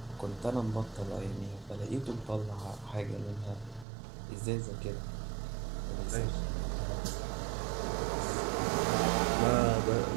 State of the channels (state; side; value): drops out; left; at 3.9 s